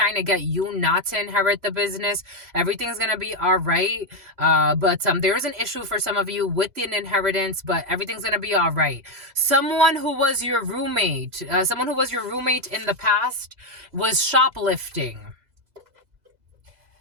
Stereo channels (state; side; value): late; left; 2.0 ms